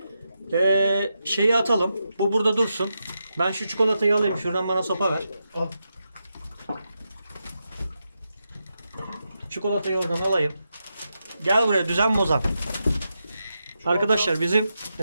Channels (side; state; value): both; inverted; correlation -0.87